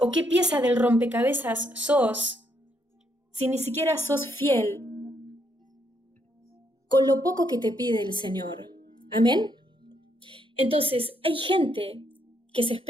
qué pieza del rompecabezas sos si ni siquiera sos fiel con lo poco que te pide el Señor? ¿Amén? Entonces, hay gente que se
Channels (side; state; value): both; normal; correlation 0.74